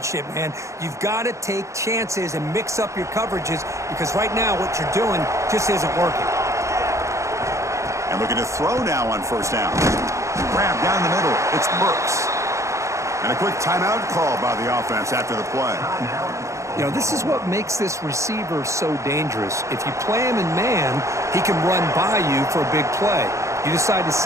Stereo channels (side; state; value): left; late; 0.15 ms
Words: man. You've got to take chances and mix up your coverages because right now what you're doing just isn't working. And looking to throw now on first down. Grab down the middle. It's Burks. And a quick timeout call by the offense after the play. You know, this is what makes this receiver so dangerous. If you play him in man, he can run by you for a big play. You decide to